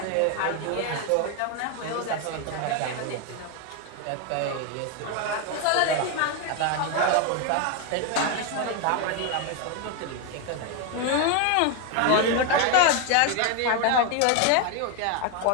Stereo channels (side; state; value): both; different; correlation 0.01